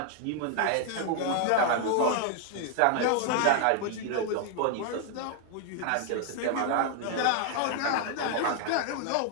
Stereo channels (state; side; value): different; both; correlation 0.00